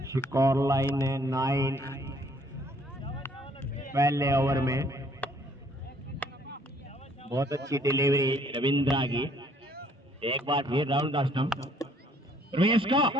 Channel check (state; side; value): normal; both; correlation 0.63